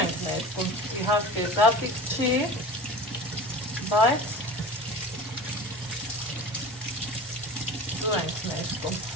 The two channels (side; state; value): both; normal; correlation 0.36